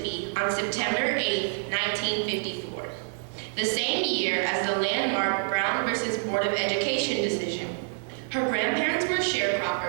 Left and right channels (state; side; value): silent; left; 58 dB below the other